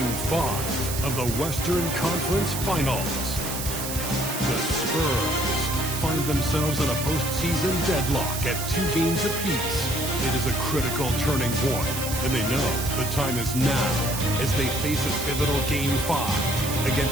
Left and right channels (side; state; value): right; noise; hiss, 5 dB below the sound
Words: 5 of the Western Conference Finals. The Spurs find themselves in a postseason deadlock at 2 games apiece. It is a critical turning point, and they know the time is now as they face a pivotal Game 5